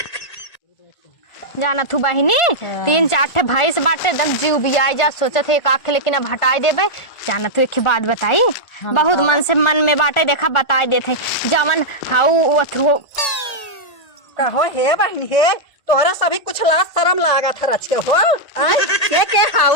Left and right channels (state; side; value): late; right; 1.4 ms